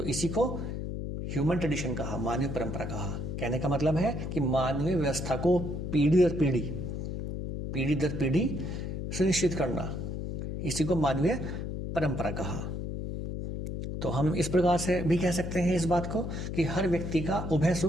इसी को ह्यूमन ट्रेडिशन कहा, मानवीय परंपरा कहा। कहने का मतलब है कि मानवीय व्यवस्था को पीढ़ी दर पीढ़ी, पीढ़ी दर पीढ़ी सुनिश्चित करना, इसी को मानवीय परंपरा कहा। तो हम इस प्रकार से भी कह सकते हैं इस बात को कि हर व्यक्ति का उभय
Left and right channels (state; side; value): noise; left; hum, 4 dB below the sound